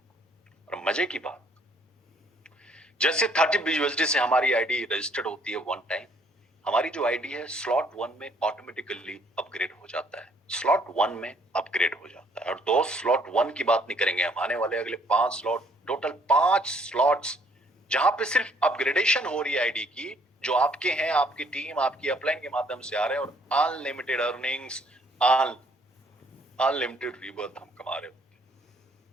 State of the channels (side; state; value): both; normal; correlation 0.64